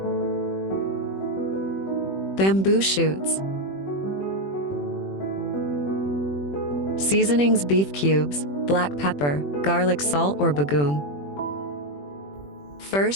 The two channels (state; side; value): late; right; 21 ms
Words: bamboo shoots, seasonings: beef cubes, black pepper, garlic salt or bagoong.